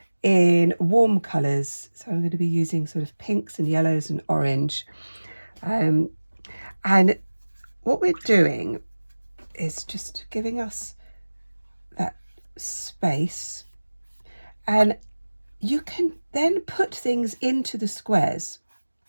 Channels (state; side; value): inverted; both; correlation -1.00